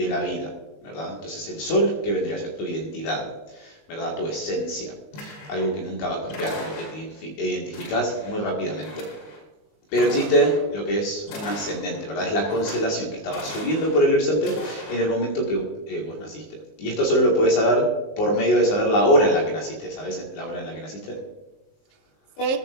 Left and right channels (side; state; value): right; late; 19 ms